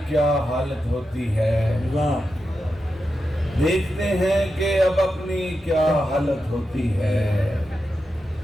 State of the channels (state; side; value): normal; both; correlation 0.89